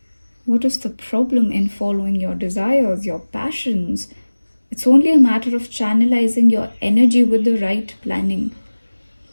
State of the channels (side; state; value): both; inverted; correlation -1.00